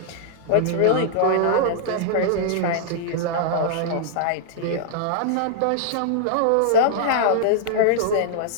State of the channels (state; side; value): different; both; correlation -0.01